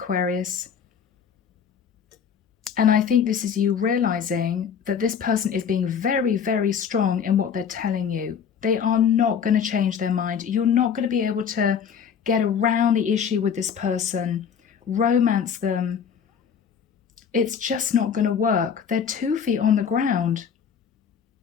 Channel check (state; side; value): quieter; right; 7.4 dB